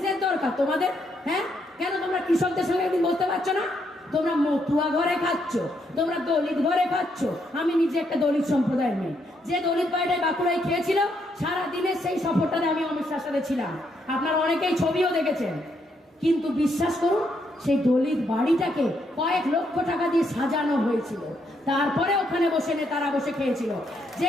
দরকার তোমাদের? হ্যাঁ, কেন তোমরা কৃষকদের সঙ্গে একদিন বলতে পারছো না? তোমরা মতুয়া ঘরে খাচ্ছ, তোমরা দলিত ঘরে খাচ্ছ। আমি নিজে একটা দলিত সম্প্রদায়ের মেয়ে, যে দলিত বাড়িটায় বাঁকুড়ায় খেয়েছিল, সারাদিনের সেই সফরটাতে আমি অমিত শাহের সাথে ছিলাম। আপনারা অনেকেই ছবিও দেখেছেন। কিন্তু বিশ্বাস করুন, সেই দলিত বাড়িটাকে কয়েক লক্ষ টাকা দিয়ে সাজানো হয়েছিল। তারপরে ওখানে বসে নেতারা বসে খেয়েছিল।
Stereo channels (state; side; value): normal; both; correlation 0.75